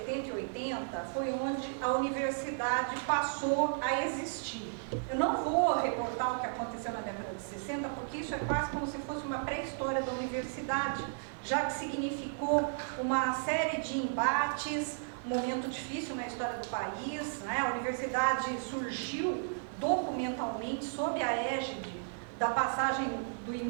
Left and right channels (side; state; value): left; silent; digital silence